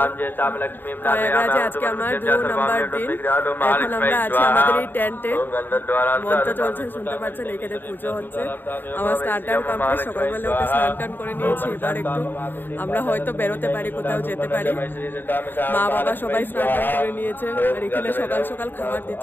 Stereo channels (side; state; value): right; late; 0.093 ms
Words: আজকে আমার 2 নম্বর দিন। এখন আমরা আছি আমাদের এই টেন্টে, মন্ত্র চলছে শুনতে পাচ্ছেন। এখানে পুজো হচ্ছে, আমার স্নান টান কমপ্লিট, সকালবেলা উঠে স্নান টান করে নিয়েছি। এবার একটু আমরা হয়তো বেরোতে পারি, কোথাও যেতে পারি। মা বাবা সবাই স্নান টান করে নিয়েছে। আর এখানে সকাল সকাল খাবার